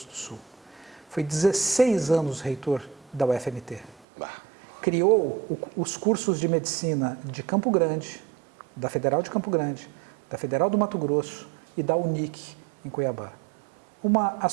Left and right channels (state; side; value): drops out; left; at 4.0 s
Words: do Sul. Foi 16 anos reitor da UFMT. Criou os cursos de medicina de Campo Grande, da Federal de Campo Grande, da Federal do Mato Grosso e da UNIC em Cuiabá. Uma